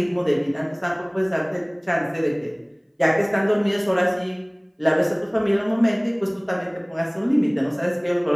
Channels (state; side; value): identical; both; correlation 1.00